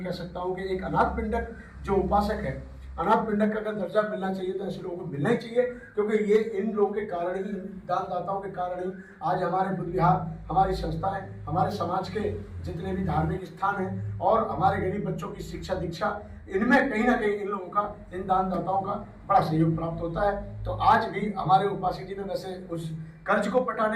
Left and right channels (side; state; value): both; identical; correlation 1.00